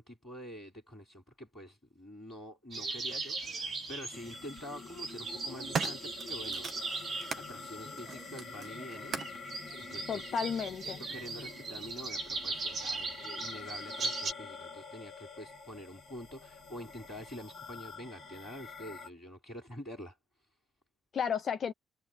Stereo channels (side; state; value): both; normal; correlation 0.68